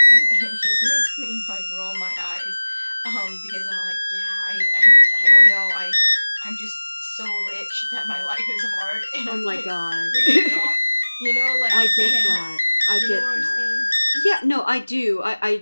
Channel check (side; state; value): both; inverted; correlation -1.00